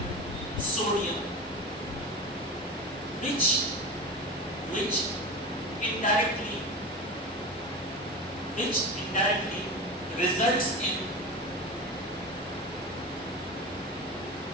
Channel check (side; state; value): both; normal; correlation 0.27